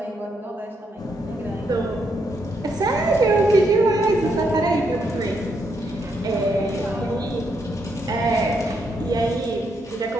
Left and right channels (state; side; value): normal; both; correlation 0.77